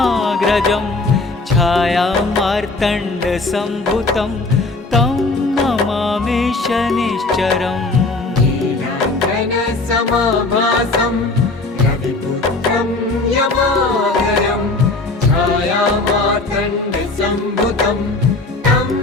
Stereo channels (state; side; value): quieter; right; 3.3 dB